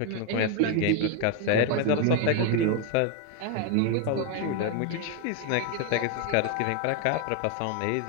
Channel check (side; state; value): both; different; correlation 0.01